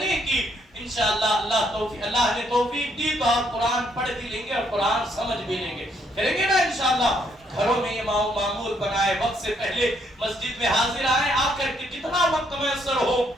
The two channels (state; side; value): normal; both; correlation 0.71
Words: کی۔ انشاءاللہ اللہ نے توفیق دی تو آپ قرآن پڑھ بھی لیں گے اور قرآن سمجھ بھی لیں گے، کریں گے نا انشاءاللہ۔ گھروں میں یہ معمول بنائے، وقت سے پہلے مسجد میں حاضر آئیں، آ کر کے جتنا وقت میسر ہو۔